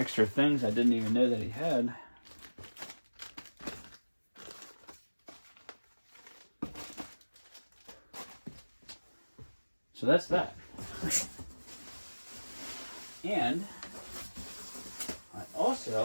things I didn't even know that he had. So that's that. And I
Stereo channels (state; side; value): inverted; both; correlation -1.00